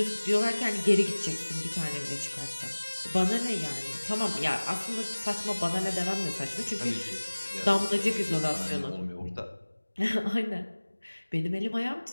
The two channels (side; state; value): both; inverted; correlation -1.00